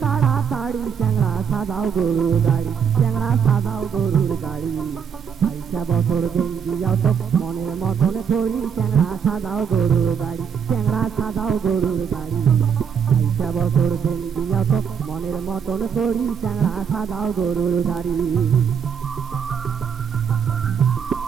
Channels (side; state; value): left; quieter; 7.2 dB